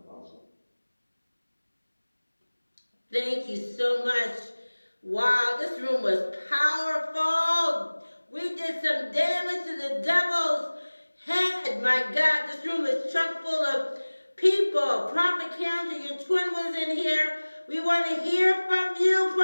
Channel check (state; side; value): inverted; both; correlation -1.00